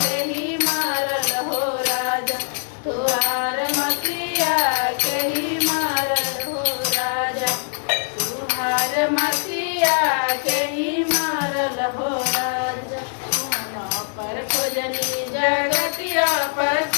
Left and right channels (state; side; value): silent; right; digital silence